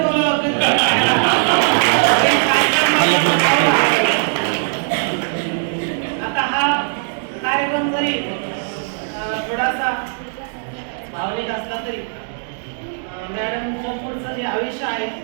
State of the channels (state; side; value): silent; left; digital silence